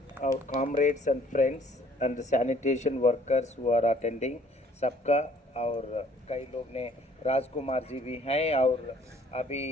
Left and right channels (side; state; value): both; normal; correlation 0.59